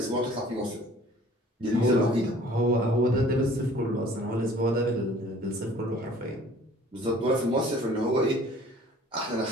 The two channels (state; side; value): normal; both; correlation 0.51